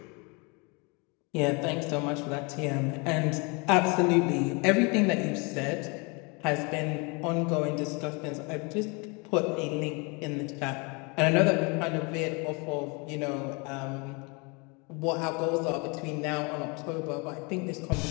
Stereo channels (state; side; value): quieter; right; 30.5 dB